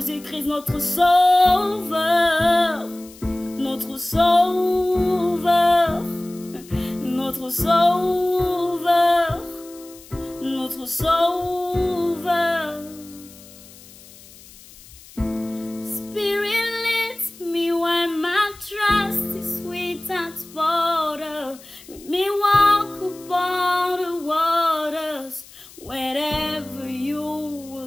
notre sauveur, notre sauveur, notre sauveur, notre sauveur. Spirit leads me when my trust is without border. Let me walk upon the waters wherever you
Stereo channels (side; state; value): left; noise; hiss, 21 dB below the sound